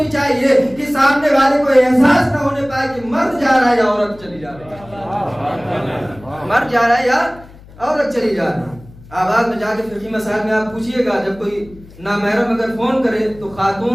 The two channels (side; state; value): left; noise; hum, 21 dB below the sound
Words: چاہیے کہ سامنے والے کو احساس نہ ہونے پائے کہ مرد جا رہا ہے یا عورت چلی جا رہی ہے، مرد جا رہا ہے یا عورت چلی جا رہی ہے۔ آواز میں جا کے فقہی مسائل میں آپ پوچھئے گا، جب کوئی نامحرم اگر فون کرے تو